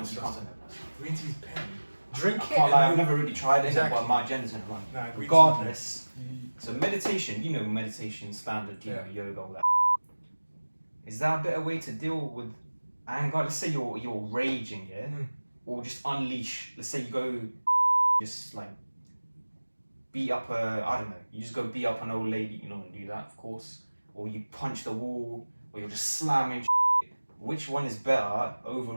say that. Green tea's pain. Drink I it. can't lie, I've never really tried it, Exactly. but my agenda's gonna run. Nah, regardless. So meditation, you know meditation, standard, you know, yoga, all that. Is that a better way to deal with anger? Let's say you're raging, yeah? Or just unleash. Let's say you go just like beat up I don't know, you just go beat up an old lady, you don't want to do that, of course. Or you punch the wall, or you're just slamming shit. Which one is better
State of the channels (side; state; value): both; inverted; correlation -1.00